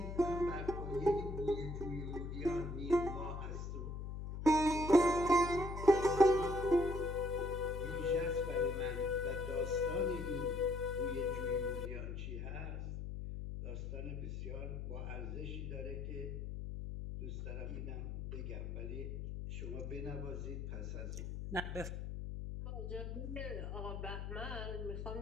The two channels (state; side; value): noise; left; hum, 5 dB below the sound